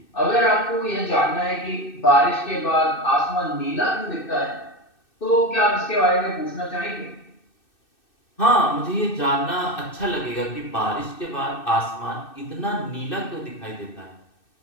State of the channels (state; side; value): late; right; 2.6 ms